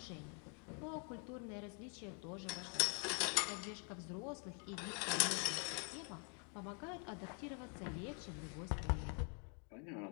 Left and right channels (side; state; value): right; quieter; 39.5 dB